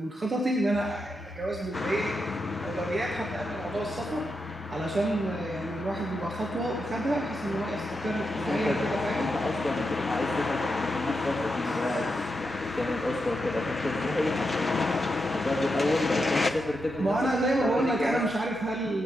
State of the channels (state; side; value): normal; both; correlation 0.86